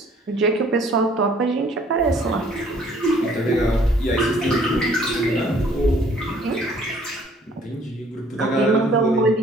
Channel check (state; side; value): normal; both; correlation 0.59